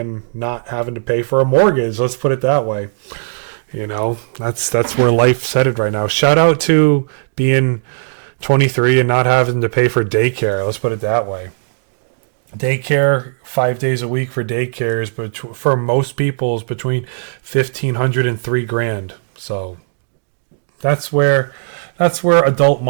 not having to pay for a mortgage. Let's put it that way. That's where life's headed right now. Shout out to being 23 and not having to pay for daycare. Let's put it that way. Daycare, 5 days a week for daycare is, but for most people, is between $1,500 and $3,000. So that's where adult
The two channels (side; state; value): left; silent; digital silence